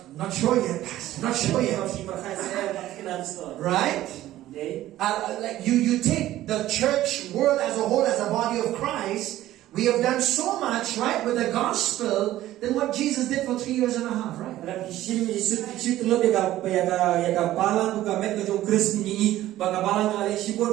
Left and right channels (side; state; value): left; quieter; 14.5 dB